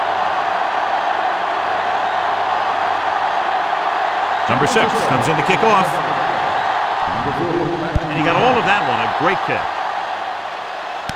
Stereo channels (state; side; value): identical; both; correlation 1.00